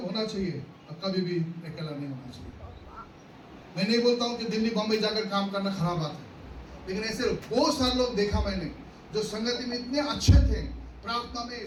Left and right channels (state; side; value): identical; both; correlation 1.00